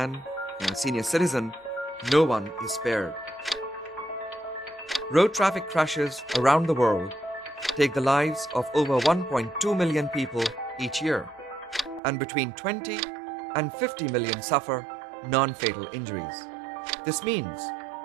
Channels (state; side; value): drops out; left; at 12.0 s